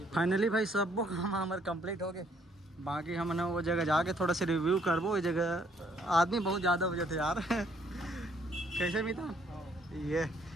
फाइनली भाई सब वो काम हमारे कंप्लीट हो गए, बाकी हम ना वो जगह जाके थोड़ा सा रिव्यू करबो। वो जगह आदमी बहुत ज़्यादा हो जाते यार कैसे भी था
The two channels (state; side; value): normal; both; correlation 0.66